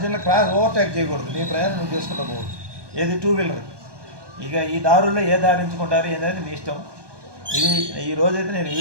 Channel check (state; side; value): late; left; 1.2 ms